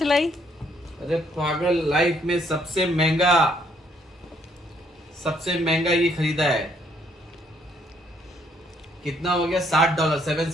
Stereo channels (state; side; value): normal; both; correlation 0.68